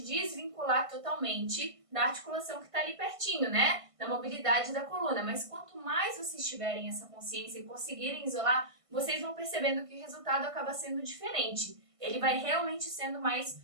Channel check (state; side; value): late; left; 1.5 ms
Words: desvincular totalmente da articulação que está ali pertinho, né? Da mobilidade da coluna. Mas quanto mais vocês tiverem essa consciência e conseguirem isolar, vocês vão percebendo que o resultado acaba sendo diferente. Ele vai realmente sendo mais